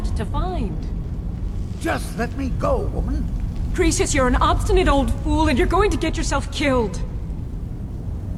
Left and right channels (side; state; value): both; identical; correlation 1.00